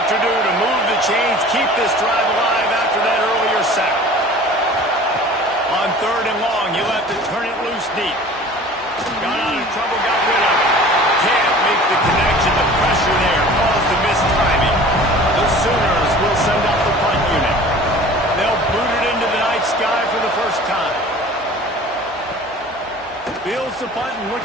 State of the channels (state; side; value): normal; both; correlation 0.44